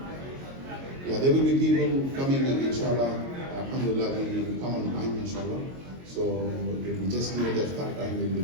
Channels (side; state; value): left; late; 22 ms